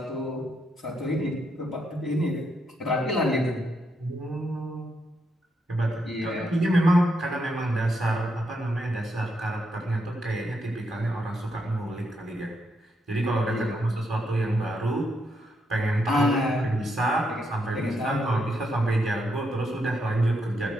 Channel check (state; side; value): normal; both; correlation 0.79